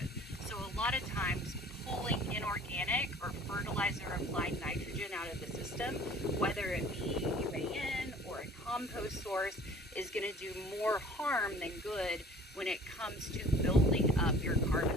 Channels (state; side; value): normal; both; correlation 0.48